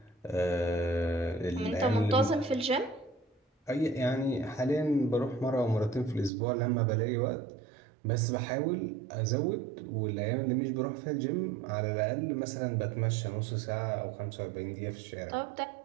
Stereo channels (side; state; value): left; drops out; at 6.3 s